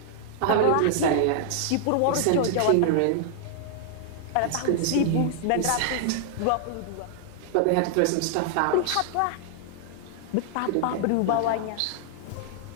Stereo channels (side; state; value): both; different; correlation 0.00